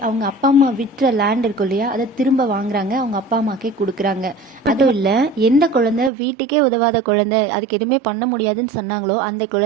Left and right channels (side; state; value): left; drops out; at 6.1 s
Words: அவங்க அப்பா அம்மா விற்ற லேண்ட் இருக்கும் இல்லையா, அதை திரும்ப வாங்குறாங்க, அவங்க அப்பா அம்மாக்கே கொடுக்குறாங்க. அதுவும் இல்ல, எந்த குழந்தை வீட்டுக்கே உதவாத குழந்தை, அதுக்கு எதுவுமே பண்ண முடியாதுன்னு சொன்னாங்களோ அந்த